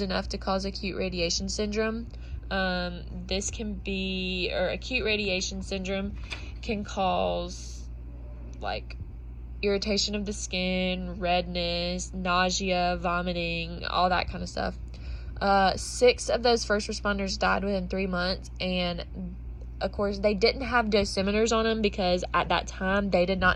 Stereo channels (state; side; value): identical; both; correlation 1.00